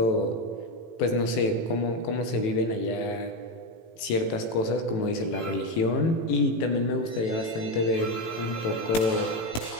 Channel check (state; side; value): late; right; 18 ms